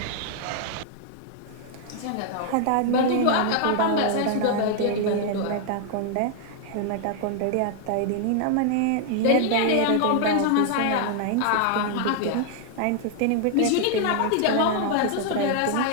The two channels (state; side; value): different; both; correlation 0.00